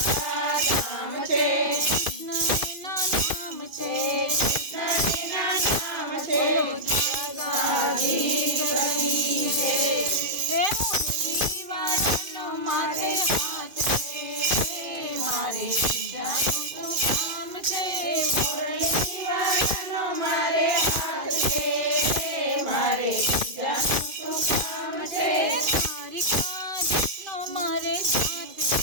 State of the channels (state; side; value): late; left; 2.5 ms